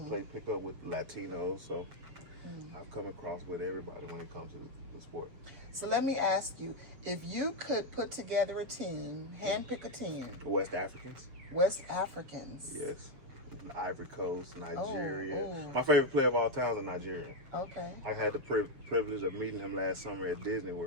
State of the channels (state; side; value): late; left; 7.4 ms